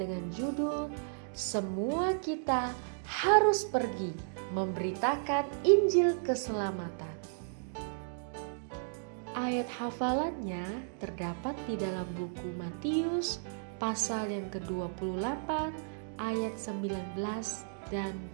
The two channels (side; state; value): left; silent; digital silence